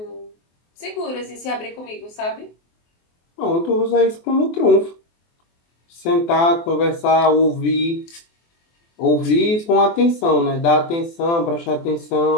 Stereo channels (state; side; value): late; right; 24 ms